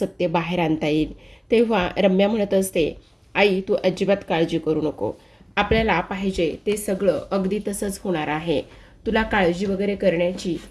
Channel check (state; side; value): identical; both; correlation 1.00